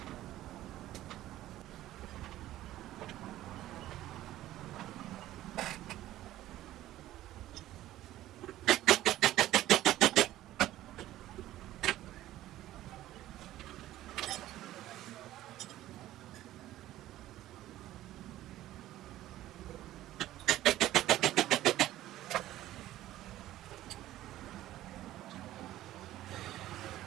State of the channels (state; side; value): quieter; left; 14.4 dB